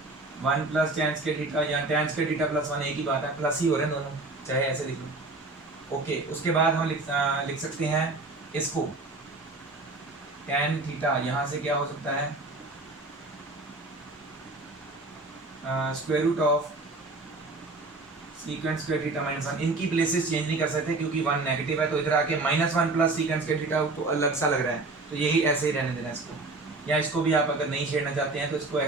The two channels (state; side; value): quieter; left; 3.3 dB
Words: 1 plus tan square theta, या tan स्क्वायर थीटा प्लस 1 एक ही बात है, प्लस ही हो रहे हैं दोनों, चाहे ऐसे लिख लो, ओके। उसके बाद हम लिख सकते हैं इसको tan थीटा, यहाँ से क्या हो सकता है, square root of secant square theta minus 1, इनकी प्लेसेस चेंज नहीं कर सकते क्योंकि 1 नेगेटिव है, तो इधर आके -1 प्लस सेकेंड स्क्वायर थीटा तो अलग सा लग रहा है, तो यही ऐसे ही रहने देना इसको। या इसको भी आप अगर नहीं छेड़ना चाहते हैं तो इसको